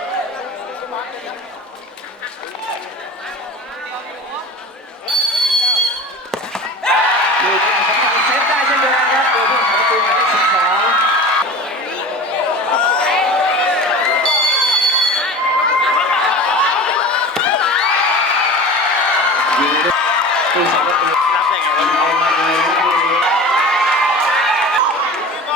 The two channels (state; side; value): normal; both; correlation 0.35